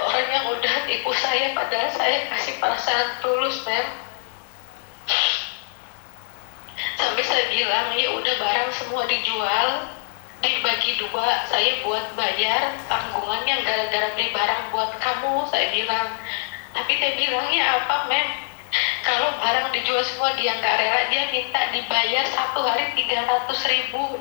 orang yang udah tipu saya, padahal saya kasih perasaan tulus mem. Sampai saya bilang ya udah barang semua dijual, dibagi 2, saya buat bayar tanggungannya gara-gara beli barang buat kamu, saya bilang. Tapi dia bilangnya apa mem? Kalau barang dijual semua dia nggak rela, dia minta dibayar 1 hari 300.000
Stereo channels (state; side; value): silent; right; digital silence